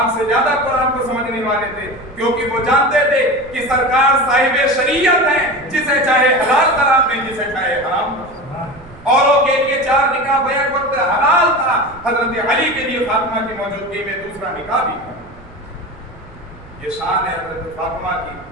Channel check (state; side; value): noise; right; rumble, 22 dB below the sound